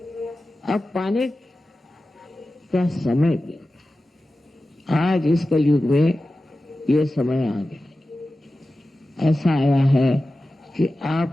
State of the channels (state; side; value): normal; both; correlation 0.94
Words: अब पाने का समय गया। आज इस कलयुग में ये समय आ गया, ऐसा आया है कि